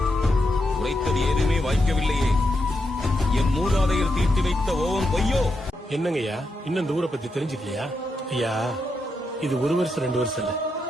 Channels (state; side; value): normal; both; correlation 0.84